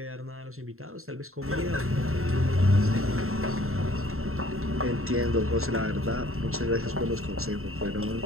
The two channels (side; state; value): left; late; 0.62 ms